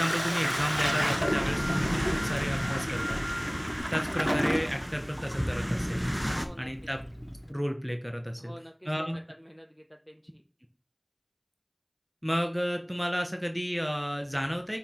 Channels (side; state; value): both; identical; correlation 1.00